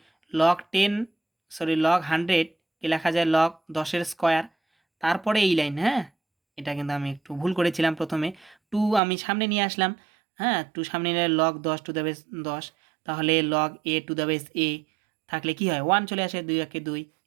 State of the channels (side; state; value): left; drops out; at 9.0 s